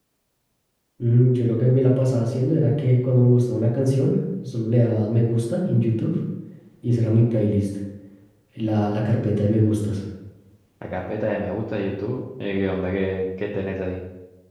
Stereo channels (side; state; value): both; identical; correlation 1.00